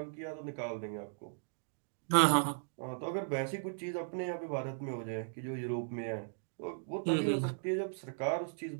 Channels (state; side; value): silent; left; digital silence